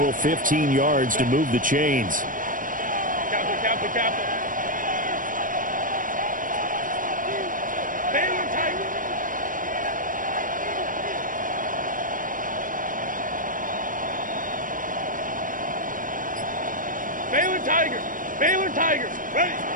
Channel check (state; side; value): late; left; 0.39 ms